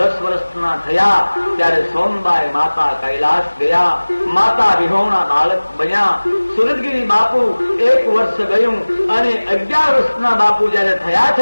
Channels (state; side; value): inverted; both; correlation -1.00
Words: વર્ષના થયા ત્યારે સોનબાઈ માતા કૈલાસ ગયા. માતા વિહોણા બાળક બન્યા. સુરતગીરી બાપુ 1 વર્ષ ગયું અને 11 વર્ષના બાપુ જયારે થયા